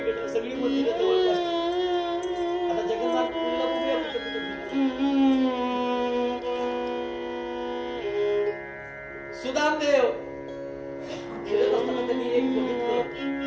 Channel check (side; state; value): both; identical; correlation 1.00